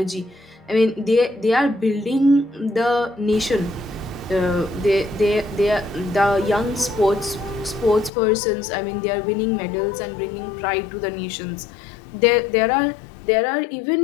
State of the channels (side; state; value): right; drops out; at 8.1 s